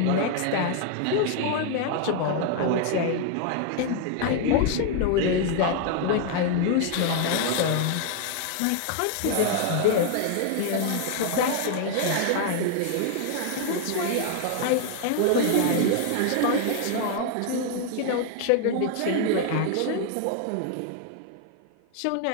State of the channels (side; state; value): both; different; correlation 0.00